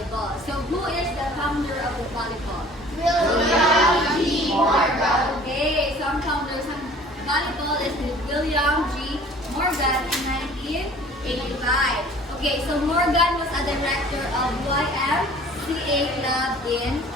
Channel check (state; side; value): normal; both; correlation 0.49